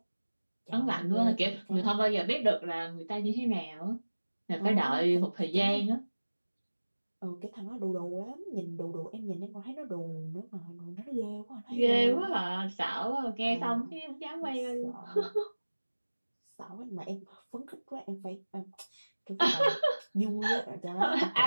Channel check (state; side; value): inverted; both; correlation -1.00